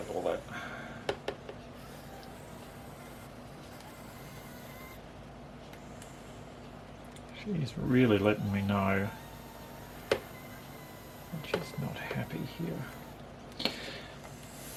all that. She's really letting me know that she's not happy here.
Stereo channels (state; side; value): identical; both; correlation 1.00